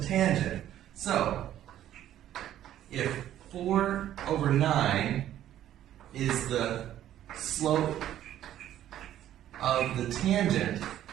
tangent. So, if 4 over 9 is the slope of the tangent,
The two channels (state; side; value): quieter; left; 12.0 dB